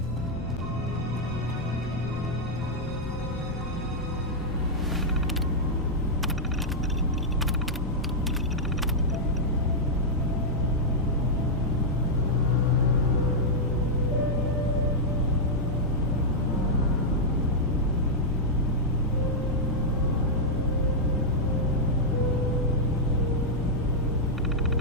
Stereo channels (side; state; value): both; normal; correlation -0.05